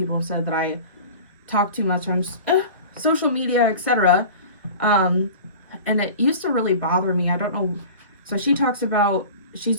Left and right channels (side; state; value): both; inverted; correlation -0.38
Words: have said that I talk too much on social media, etc. And it used to really bother me. I don't know. So she talks about, she's